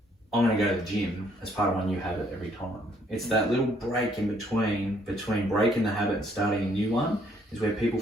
I'm going to go to the gym as part of my new habit every time. It's that little break in between breaking the habit and starting a new one is where people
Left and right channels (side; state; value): both; normal; correlation 0.66